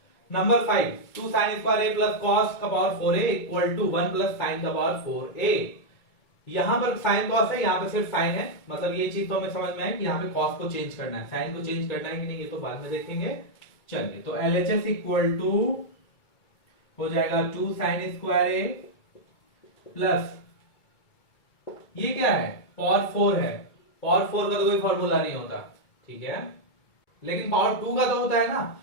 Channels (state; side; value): late; right; 2.2 ms